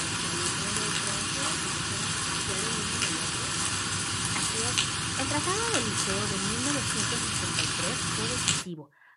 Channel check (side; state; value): both; identical; correlation 1.00